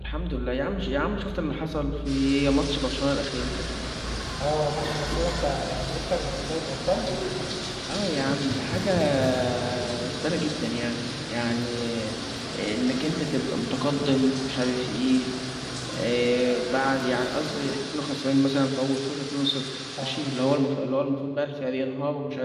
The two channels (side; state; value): both; identical; correlation 1.00